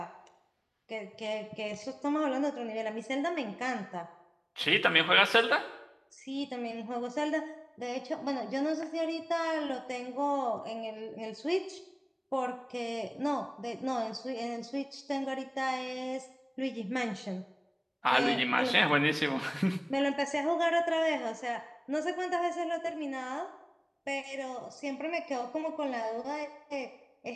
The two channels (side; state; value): both; identical; correlation 1.00